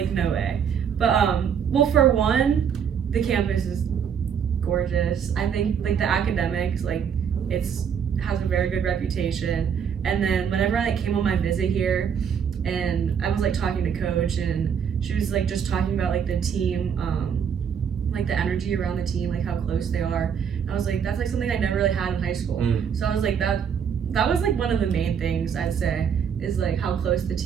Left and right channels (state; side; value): quieter; left; 7.5 dB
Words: no way. But well, for one, the campus is gorgeous. I think like the academics, like has a very good reputation. And then whenever I like came on my visit here, and I was like talking to Coach, and she was like just talking about like the team, like the energy around the team, like how close they are. And I was like, that's like something I never really had in high school. So I was like, that was like one of the main things I'd say is like how close the